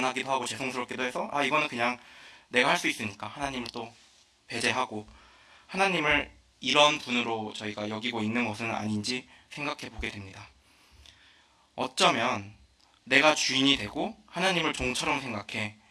하고 죄송스럽기도 해서 이거는 그냥 내가 할 수 있으니까 하나님을 또 배제하고 하나님을 이런 분으로 저희가 여기고 있는 것은 아닌지 생각해 보게 됩니다. 어쩌면 내가 주인이 되고 하나님을 종처럼 생각해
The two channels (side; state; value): both; identical; correlation 1.00